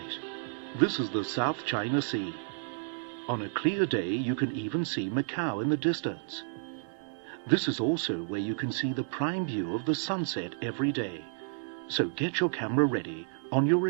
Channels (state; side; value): silent; left; digital silence